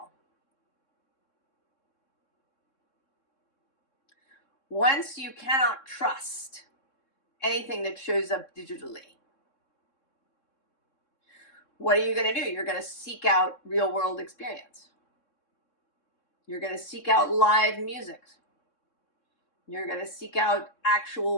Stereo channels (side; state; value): right; late; 3.6 ms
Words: once you cannot trust anything that shows up digitally, what are you going to do? You're going to seek out real world experience. You're going to seek out live music. You're going to seek out